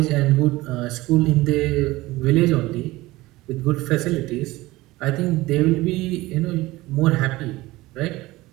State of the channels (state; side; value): quieter; left; 19.2 dB